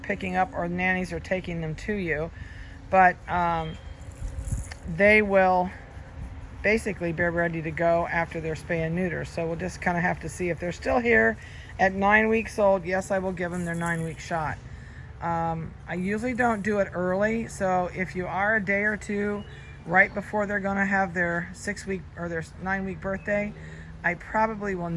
up or nannies are taking them to you. But they will basically be ready to go after their spay and neuter. So we'll just kind of have to see if they're still here at 9 weeks old. Yes, I will give them their 9-week shot. I usually don't do it early, so if you are a day or two right before they're going to have their 6-week or their 9-week birthday, I probably will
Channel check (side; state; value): both; identical; correlation 1.00